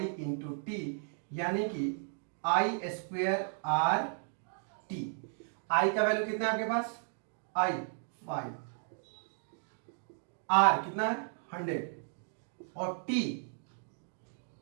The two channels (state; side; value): silent; left; digital silence